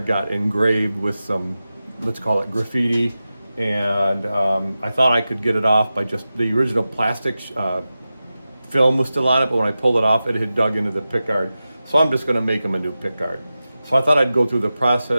got engraved with some, let's call it graffiti. And I thought I could get it off by just the original plastic film was still on it, but when I pulled it off, it had dug into the pickguard. So I'm just going to make him a new pickguard. So I thought I'd go through the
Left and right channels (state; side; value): inverted; both; correlation -0.94